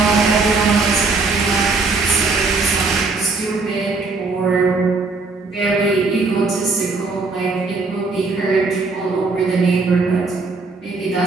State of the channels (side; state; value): left; quieter; 3.9 dB